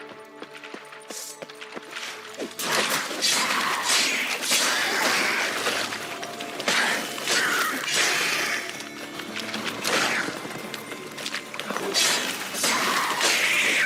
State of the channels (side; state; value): both; identical; correlation 1.00